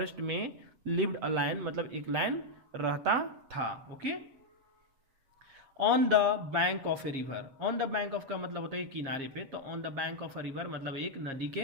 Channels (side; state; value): left; late; 7.3 ms